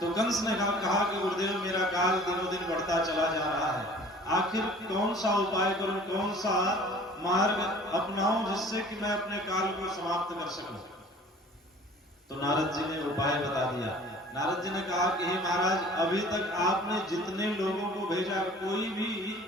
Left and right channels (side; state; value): both; normal; correlation 0.48